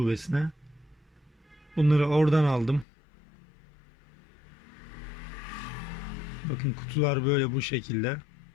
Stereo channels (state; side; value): drops out; right; at 2.9 s